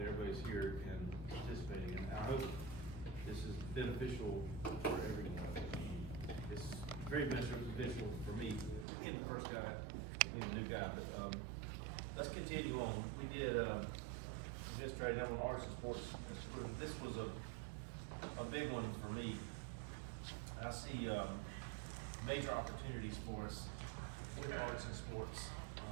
everybody's here and participating, and I hope this is beneficial for everyone. It's very beneficial for me, being the first guy, being the new guy, but, let's continue on. We did, administrative level arts and sports. This was a big one for me. I see, major opportunities for us with arts and sports.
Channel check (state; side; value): drops out; left; at 8.8 s